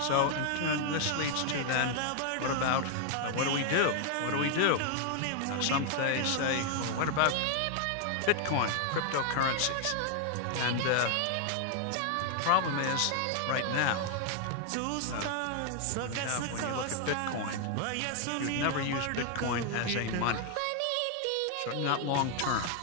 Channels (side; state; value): both; different; correlation 0.00